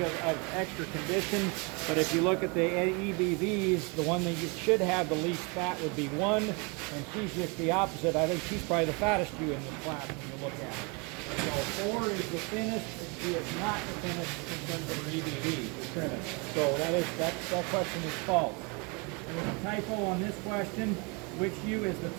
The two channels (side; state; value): left; quieter; 31.2 dB